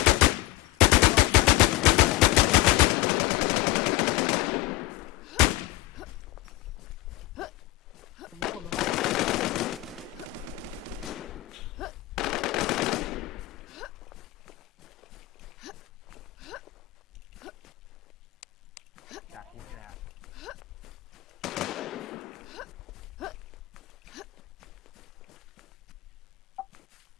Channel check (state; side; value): quieter; right; 16.6 dB